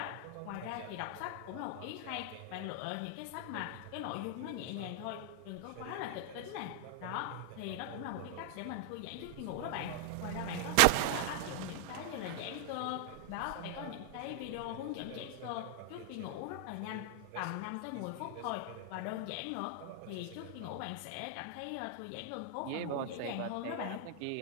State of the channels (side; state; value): both; different; correlation 0.00